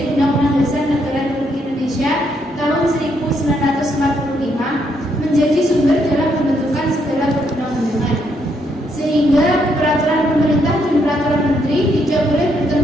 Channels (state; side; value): normal; both; correlation 0.75